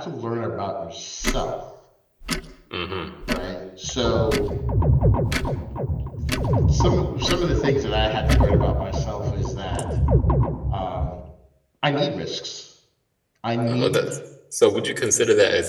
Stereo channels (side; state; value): both; identical; correlation 1.00